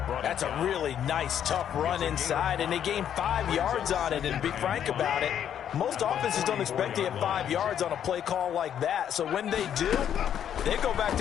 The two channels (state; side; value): quieter; right; 9.5 dB